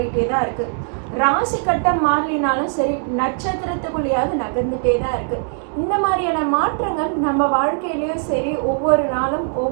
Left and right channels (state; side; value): silent; left; 62 dB below the other